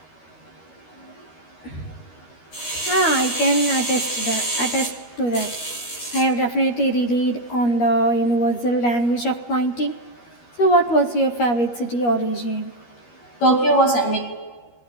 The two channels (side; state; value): right; late; 13 ms